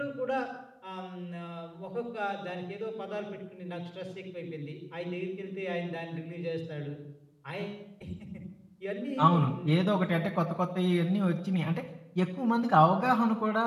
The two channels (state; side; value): identical; both; correlation 1.00